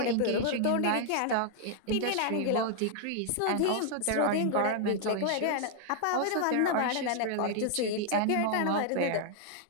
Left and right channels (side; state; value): both; different; correlation 0.00